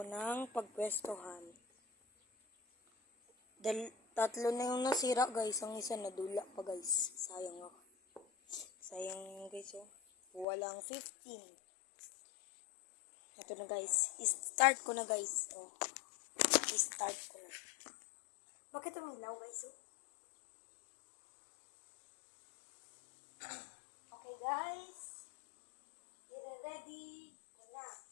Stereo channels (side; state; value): right; drops out; at 10.5 s